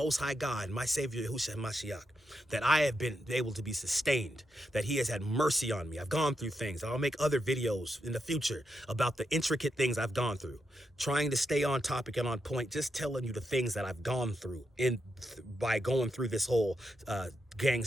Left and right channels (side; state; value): both; normal; correlation 0.84